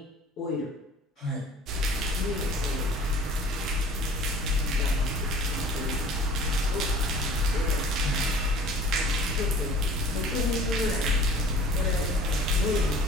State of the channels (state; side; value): normal; both; correlation 0.48